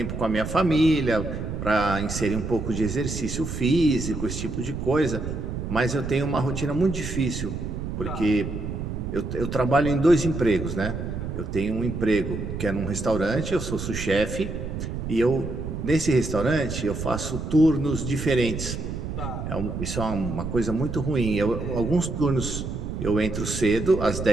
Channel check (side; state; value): right; noise; rumble, 5 dB below the sound